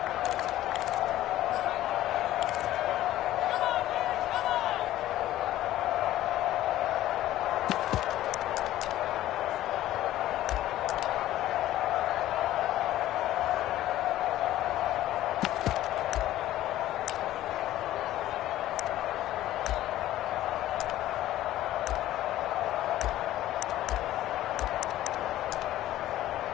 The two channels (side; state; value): right; quieter; 14.2 dB